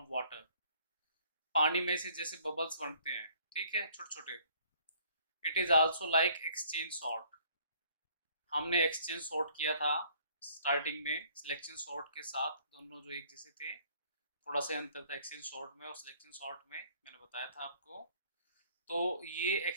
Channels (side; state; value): both; inverted; correlation -0.60